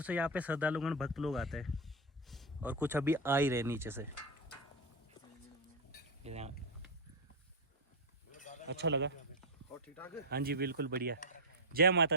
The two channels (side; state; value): both; normal; correlation 0.05